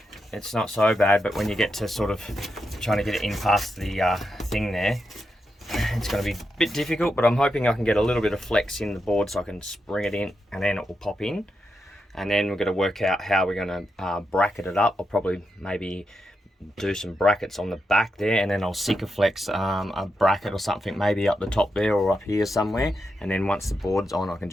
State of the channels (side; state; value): both; normal; correlation 0.86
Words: it's not so bad, but when you get to sort of trying to get it in past the thing there, it's going to be a bit difficult, but I'm hoping I can get a little bit of flex in the board so I can spring it in and then it will pop in. And then we're going to work out how we're going to bracket it up. I'll probably maybe do some brackets on the back there, and then I'll Sikaflex a bracket or something maybe up the top there or up here somewhere, and then once the board's on I can